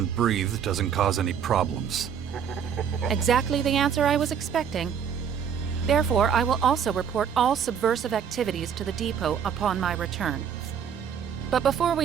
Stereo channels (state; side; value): quieter; left; 7.9 dB